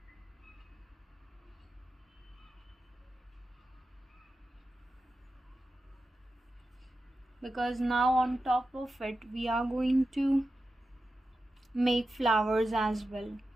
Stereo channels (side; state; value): both; normal; correlation 0.91